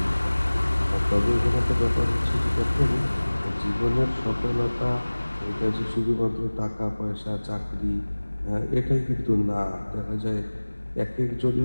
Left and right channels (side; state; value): both; inverted; correlation -1.00